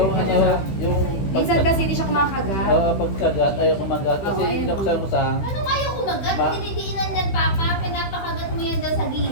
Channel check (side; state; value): right; late; 15 ms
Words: ano, yung Minsan kasi hindi siya kumakagat. pagkagat, ayaw kumagat. Kasi Oo, ayaw binuksan ko sa... Ano kayo kumagat? Ma- Dinidiinan yan, Papa. Pinapakagat mo yan daw sa